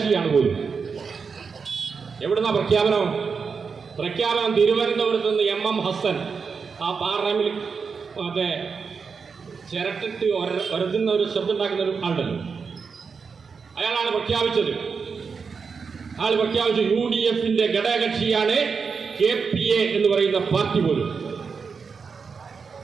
പോലും. എവിടുന്ന പ്രഖ്യാപനം തിരുവനന്തപുരത്ത് നിന്ന് MM ഹസൻ, ആ പാർലമെന്റിൽ മറ്റേ ചിരട്ടിട്ട് ഒരതുന്ന ഒരു ശബ്ദം ഉണ്ടാക്കുന്ന ഒരു ആളുണ്ടല്ലോ, അയാളാണ് പ്രഖ്യാപിച്ചത്. ആൾ പ്രഖ്യാപിച്ചു UDF-ന്റെ ഘടകകക്ഷിയാണ് KPA എന്ന് പറയുന്ന പാർട്ടി പോലും.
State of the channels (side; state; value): left; quieter; 5.5 dB